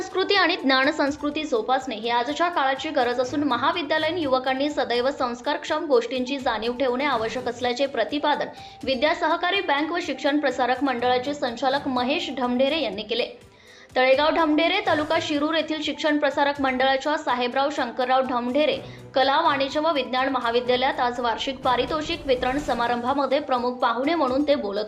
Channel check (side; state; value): both; identical; correlation 1.00